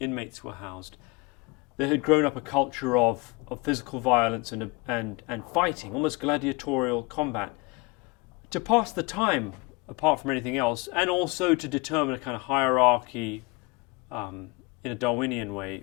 were housed, there had grown up a culture of physical violence and fighting, almost gladiatorial combat, to pass the time apart from anything else, and also to determine a kind of hierarchy in a Darwinian way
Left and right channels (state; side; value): quieter; right; 26.8 dB